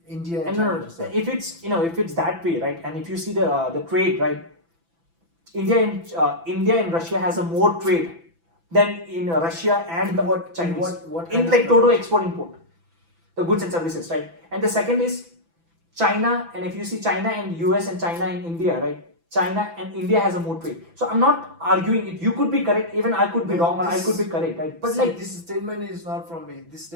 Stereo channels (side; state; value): left; late; 6.0 ms